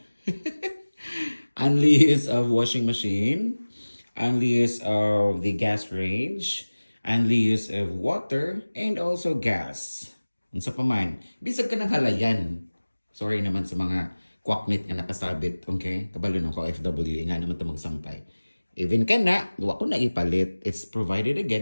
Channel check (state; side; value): inverted; both; correlation -1.00